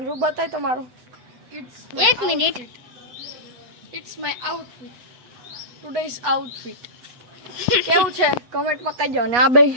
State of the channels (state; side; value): late; left; 8.2 ms